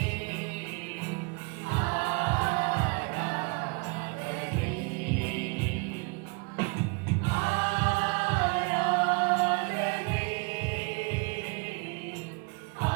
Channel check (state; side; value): quieter; left; 31.5 dB